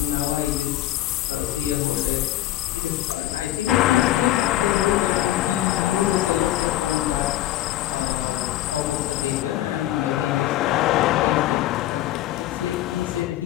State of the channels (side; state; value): right; quieter; 14.3 dB